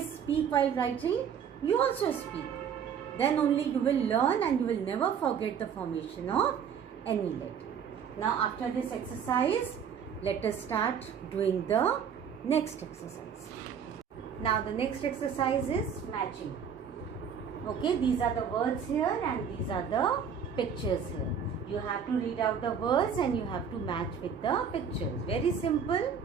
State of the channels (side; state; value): left; quieter; 7.3 dB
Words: speak while writing, you also speak. Then only you will learn and you will never forget the formation of any letter. Now after this exercise, let us start doing the next exercise. Now the next exercise is matching. Okay, these are the words here and these are the pictures here. You have to read out the words and you have to match with the pictures. Very simple.